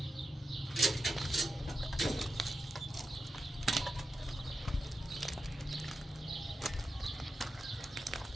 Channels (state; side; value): normal; both; correlation 0.89